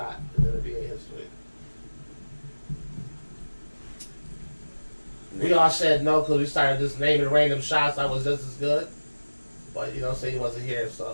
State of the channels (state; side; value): inverted; both; correlation -1.00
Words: in NBA history? We all said no because we started just naming random shots that was just as good. But you know, say he wasn't here,